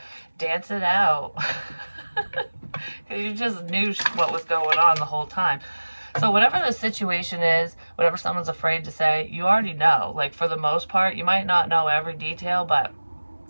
Dance it out. Because you just knew what was going on the whole time. So whatever the situation is, whatever someone's afraid to say, you already know. Like, for the most part, you might not know every detail, but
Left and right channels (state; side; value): inverted; both; correlation -1.00